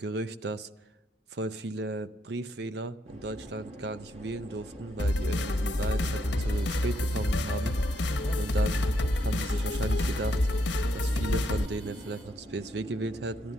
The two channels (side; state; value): both; normal; correlation 0.76